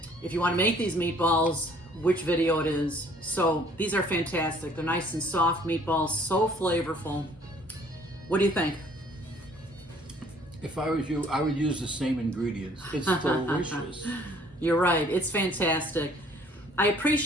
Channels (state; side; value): normal; both; correlation 0.58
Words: if you want to make these meatballs, which video it is. So these are fantastic. They're nice and soft meatballs, so flavorful. What do you think? If I was you, I would use the same ingredients. It's delicious. You're right. It's fantastic. I